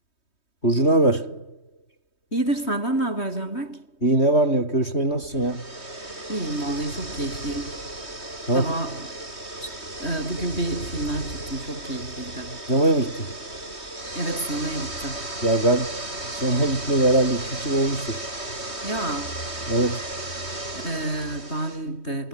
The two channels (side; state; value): right; late; 3.2 ms